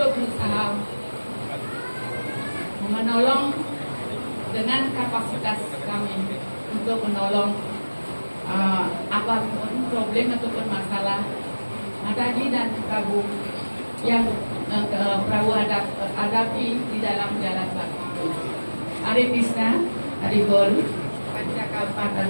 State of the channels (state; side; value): inverted; both; correlation -1.00